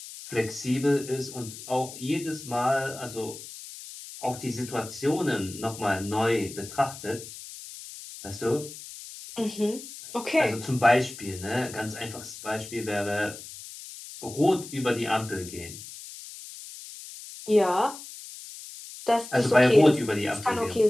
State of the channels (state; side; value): noise; left; hiss, 14 dB below the sound